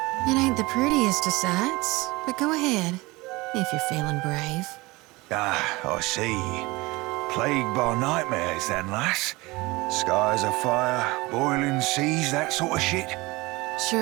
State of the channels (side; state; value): left; quieter; 22.4 dB